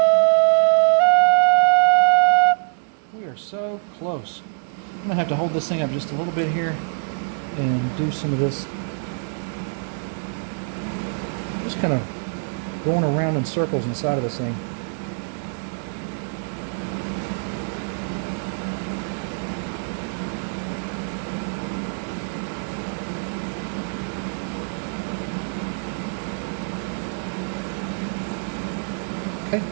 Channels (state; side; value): silent; left; 62 dB below the other